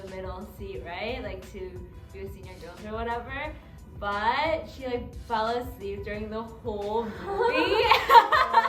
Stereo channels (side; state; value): both; identical; correlation 1.00